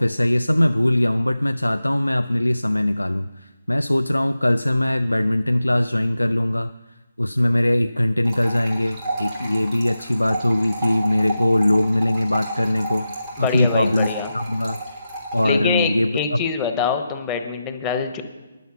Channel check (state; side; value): inverted; both; correlation -0.90